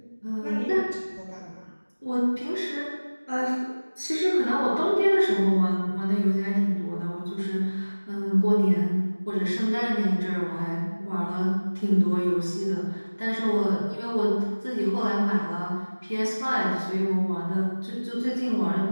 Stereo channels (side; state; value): both; inverted; correlation -1.00